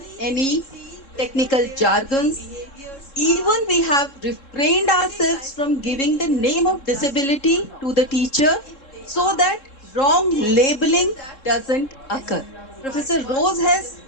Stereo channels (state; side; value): late; right; 3.7 ms